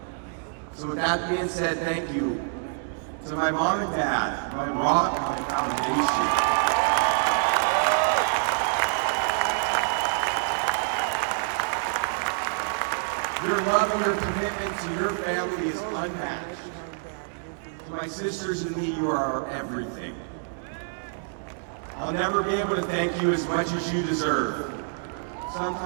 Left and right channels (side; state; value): left; silent; digital silence